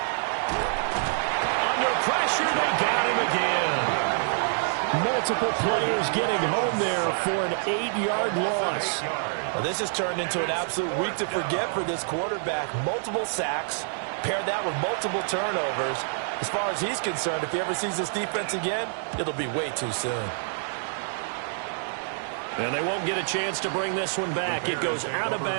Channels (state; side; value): silent; left; 60 dB below the other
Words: Under pressure, they got him again. Multiple players getting home there for an 8-yard loss. Well, this has turned into an absolute week to forget for this quarterback. Multiple sacks, pair that with multiple turnovers. As far as he's concerned, if he ever sees this defense again, it'll be way too soon. And they won't get a chance to bring this one back. It goes out of